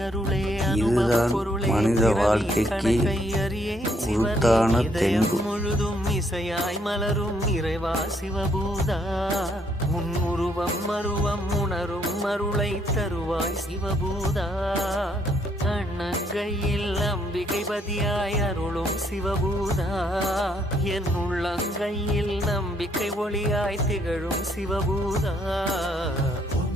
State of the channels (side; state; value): both; normal; correlation 0.70